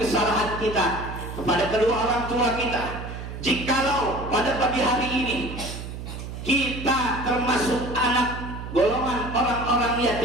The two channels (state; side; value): noise; right; hum, 9 dB below the sound